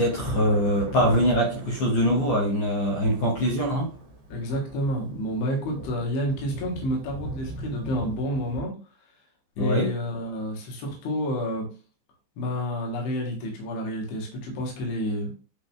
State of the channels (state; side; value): late; right; 14 ms